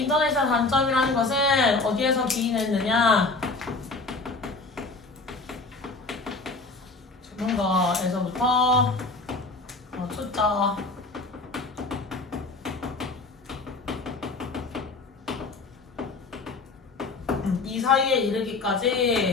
인터넷의 단점이라는 것은 어디에서 기인했느냐? 전문가에서부터 초짜 이 사이에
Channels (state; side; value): quieter; right; 3.6 dB